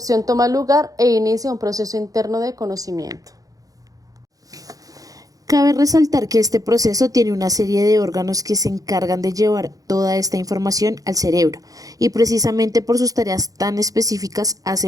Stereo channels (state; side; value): late; left; 0.17 ms